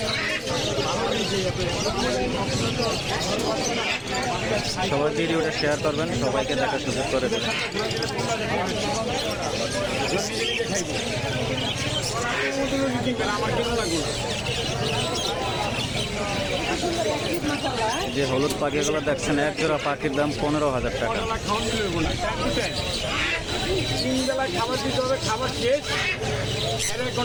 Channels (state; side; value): identical; both; correlation 1.00